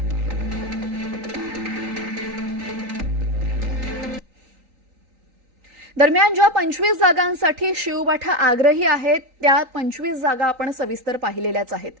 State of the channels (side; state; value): left; late; 3.8 ms